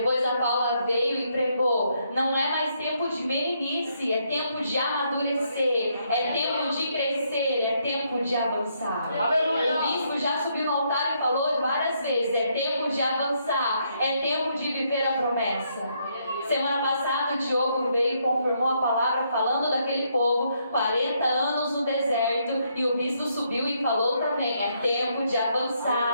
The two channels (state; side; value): inverted; both; correlation -0.74